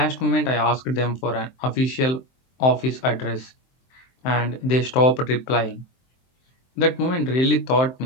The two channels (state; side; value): late; right; 23 ms